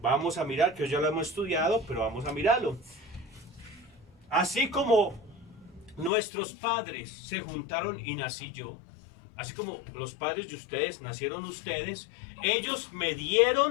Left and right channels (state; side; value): drops out; right; at 6.1 s